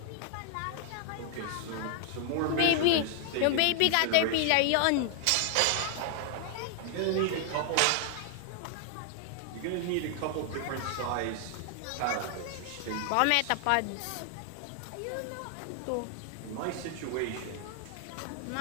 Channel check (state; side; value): different; both; correlation 0.00